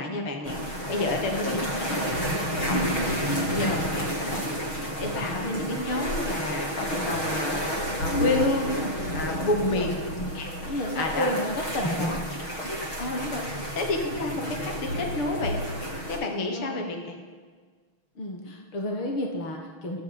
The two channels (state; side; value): late; right; 6.3 ms